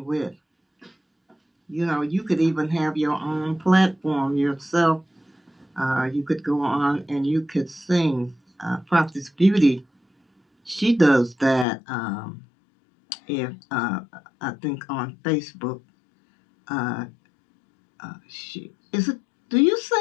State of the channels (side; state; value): right; drops out; at 11.7 s